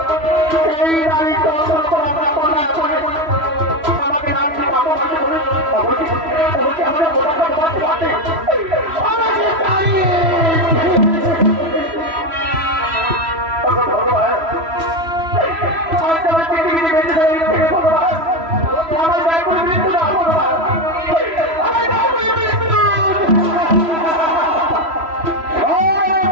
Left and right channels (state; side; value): late; left; 3.0 ms